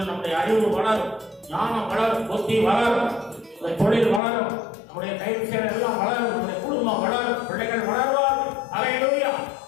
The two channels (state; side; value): drops out; right; at 4.2 s